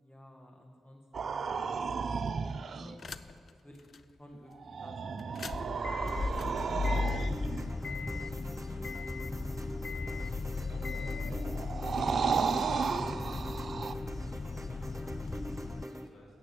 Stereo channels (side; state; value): both; normal; correlation 0.85